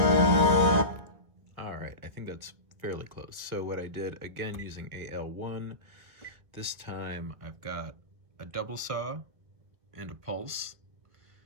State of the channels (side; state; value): left; late; 1.7 ms